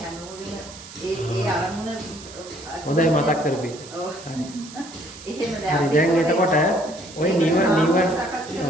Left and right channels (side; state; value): right; noise; hiss, 16 dB below the sound